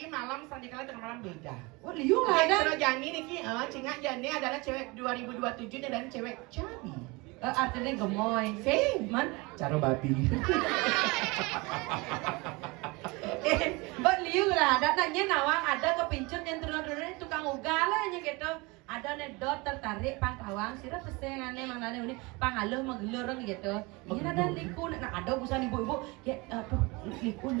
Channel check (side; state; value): left; quieter; 25.6 dB